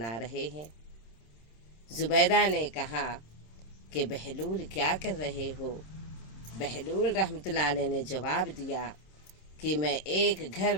رہے ہیں۔ زبیدہ نے کہا کہ بہلول کیا کر رہے ہو؟ بہلول رحمۃ اللہ علیہ نے جواب دیا کہ میں ایک گھر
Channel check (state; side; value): late; right; 26 ms